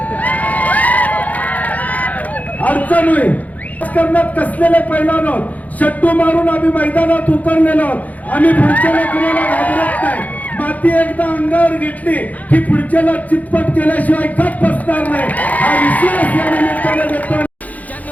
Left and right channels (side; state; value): right; late; 0.076 ms